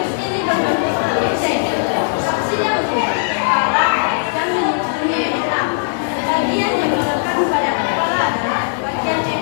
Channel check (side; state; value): right; silent; digital silence